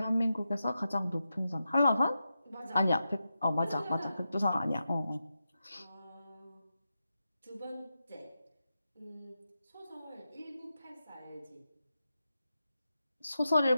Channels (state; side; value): inverted; both; correlation -0.89